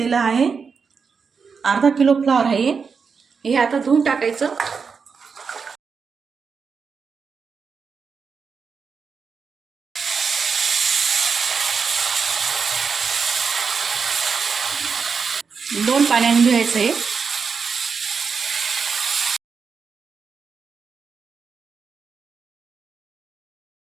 आहे. अर्धा किलो फ्लॉवर आहे. हे आता धुवून टाकायचं. दोन पाण्याने धुवायचं आहे.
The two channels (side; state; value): left; quieter; 5.6 dB